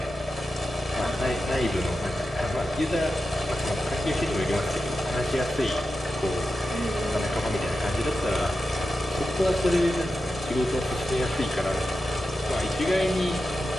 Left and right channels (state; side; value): normal; both; correlation 0.91